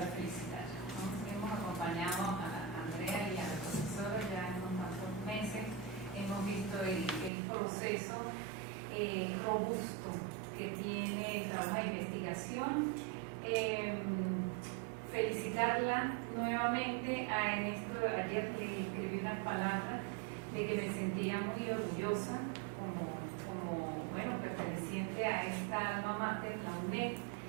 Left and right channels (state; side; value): drops out; left; at 7.3 s